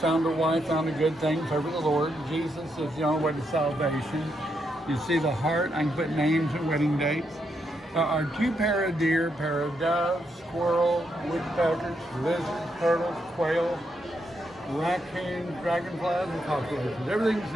a wife, found a good thing, favor the Lord. Jesus is the only way to salvation. You see the heart, I can put names and wedding dates. There are 2 pair of deer, pair of doves, squirrel, woodpeckers, lizards, turtles, quail, raccoons, dragonflies, and cockroaches. Everything's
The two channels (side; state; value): both; normal; correlation 0.80